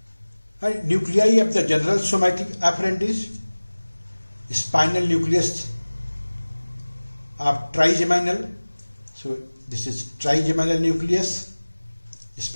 And nuclei of the general somatic afferent is spinal nucleus of trigeminal. So this is trigeminal nucleus,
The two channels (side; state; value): both; inverted; correlation -1.00